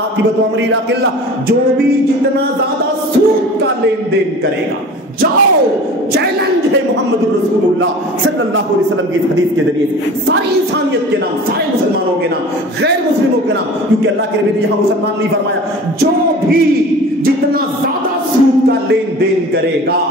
امرہ الی قلہ، جو بھی جتنا زیادہ سود کا لین دین کرے گا، جاؤ چیلنج ہے محمد رسول اللہ صلی اللہ علیہ وسلم کی حدیث کے ذریعے سے، ساری انسانیت کے نام، سارے مسلمانوں کے نام، غیر مسلموں کے نام، کیونکہ اللہ کے نبی نے یہاں مسلمان نہیں فرمایا، جو بھی جتنا زیادہ سود کا لین دین کرے گا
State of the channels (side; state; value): both; normal; correlation 0.40